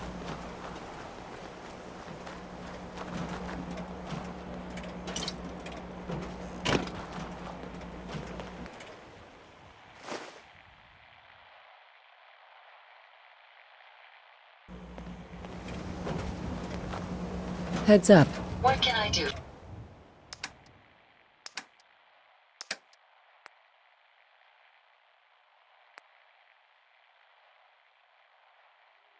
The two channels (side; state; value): both; identical; correlation 1.00